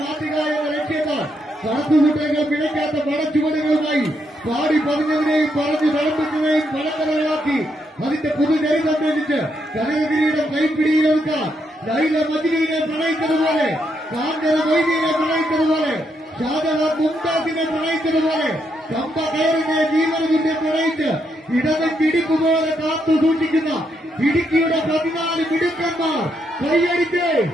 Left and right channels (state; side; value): normal; both; correlation 0.78